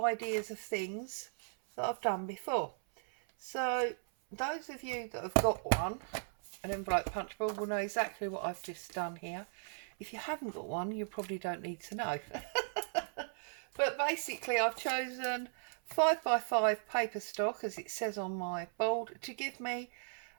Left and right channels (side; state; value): left; silent; 53 dB below the other